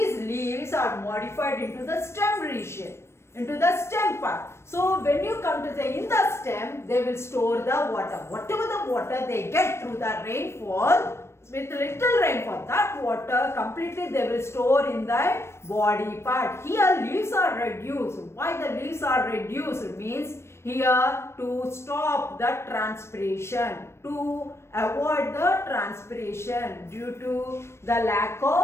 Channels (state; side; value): late; right; 0.13 ms